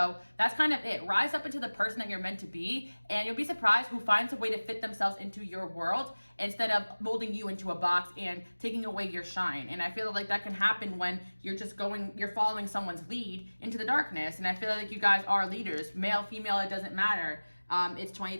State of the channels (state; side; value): inverted; both; correlation -1.00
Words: that's kind of it. Rise up into the person that you're meant to be, and you'll be surprised who finds a way to fit themselves into your world instead of molding you into a box and taking away your shine. And I feel like that can happen when you're following someone's lead into the darkness. And I feel like you guys are leaders, male, female, it doesn't matter. It's